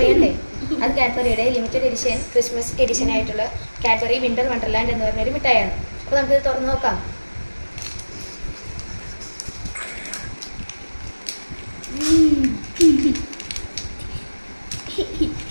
അത് കാഡ്ബറിയുടെ ലിമിറ്റഡ് എഡിഷൻ ക്രിസ്മസ് എഡിഷൻ ആയിട്ടുള്ള കാഡ്ബറി വിന്റർ വണ്ടർലാൻഡ് എന്ന് പറഞ്ഞൊരു മിഠായിയാണ്. അപ്പോൾ നമുക്കിത് തുറന്ന് നോക്കാം.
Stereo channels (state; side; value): inverted; both; correlation -1.00